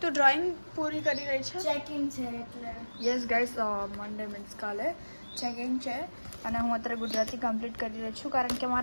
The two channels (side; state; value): both; inverted; correlation -1.00